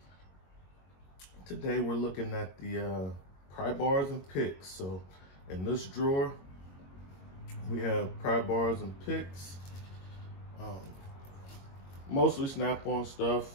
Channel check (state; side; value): late; right; 22 ms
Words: Today we're looking at the pry bars and picks. So in this drawer we have pry bars and picks. Mostly Snap-on stuff,